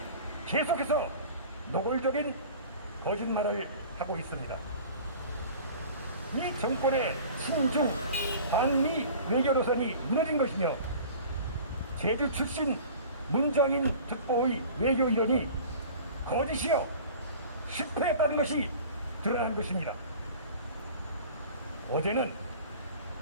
계속해서 노골적인 거짓말을 하고 있습니다. 이 정권의 친중 반미 외교 노선이 무너진 것이며 제주 출신 문정인 특보의 외교 이론이 거짓이요 실패했다는 것이 드러난 것입니다. 어제는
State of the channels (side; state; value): both; inverted; correlation -0.42